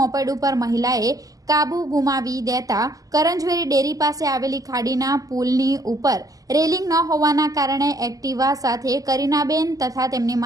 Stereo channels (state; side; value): late; left; 0.17 ms